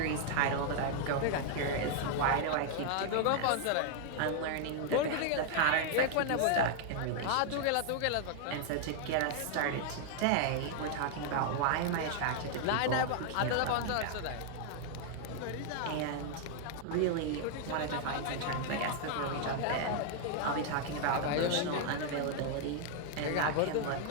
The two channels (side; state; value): both; different; correlation 0.00